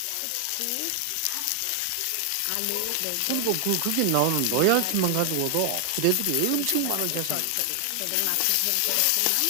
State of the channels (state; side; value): different; both; correlation 0.00